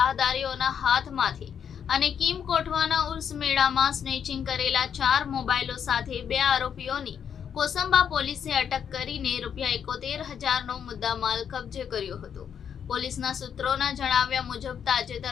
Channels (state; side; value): quieter; right; 8.0 dB